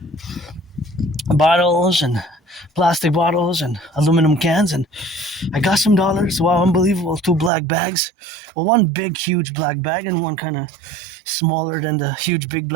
bottles and plastic bottles and aluminum cans, and I got some dollars. Wow, unbelievable. 2 black bags. Well, one big huge black bag and one kind of smaller than the huge big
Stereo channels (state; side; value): drops out; left; at 7.5 s